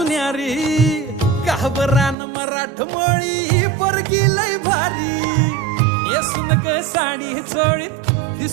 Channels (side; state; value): left; drops out; at 2.1 s